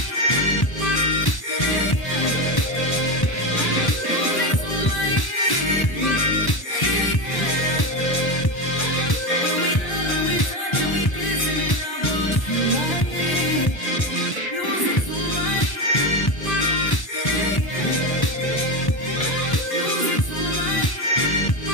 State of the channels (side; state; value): right; late; 1.1 ms